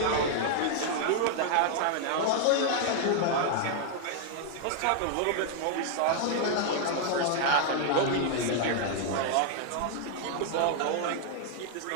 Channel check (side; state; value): both; different; correlation 0.00